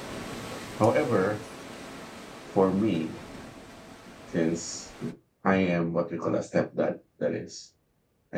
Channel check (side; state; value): both; identical; correlation 1.00